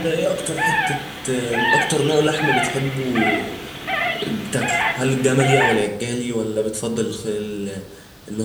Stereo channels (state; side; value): identical; both; correlation 1.00